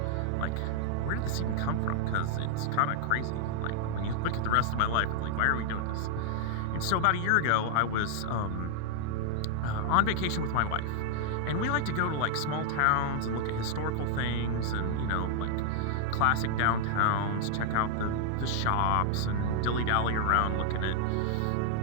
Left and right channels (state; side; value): different; both; correlation 0.00